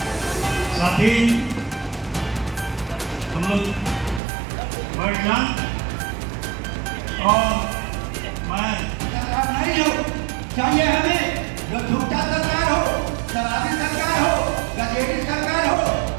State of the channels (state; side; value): drops out; left; at 4.2 s